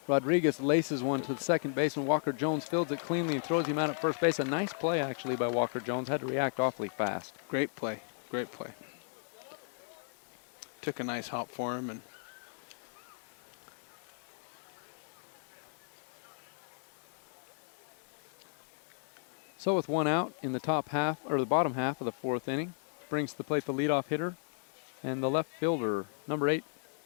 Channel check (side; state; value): right; silent; 55 dB below the other